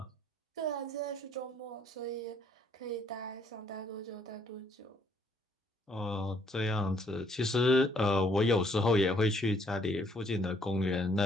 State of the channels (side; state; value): both; normal; correlation 0.66